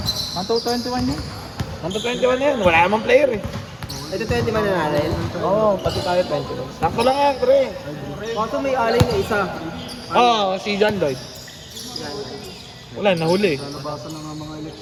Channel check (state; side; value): identical; both; correlation 1.00